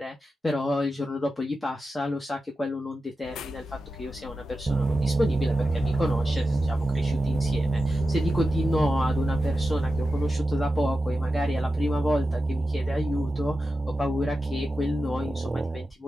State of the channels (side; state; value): both; normal; correlation 0.91